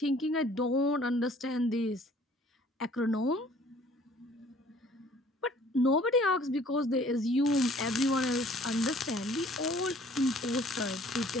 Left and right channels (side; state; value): both; normal; correlation 0.55